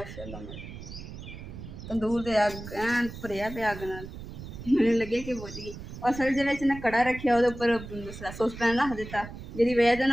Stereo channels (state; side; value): noise; right; rumble, 12 dB below the sound